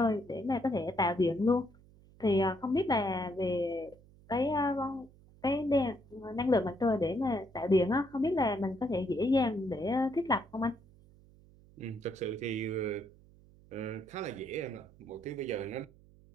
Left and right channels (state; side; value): noise; right; hum, 25 dB below the sound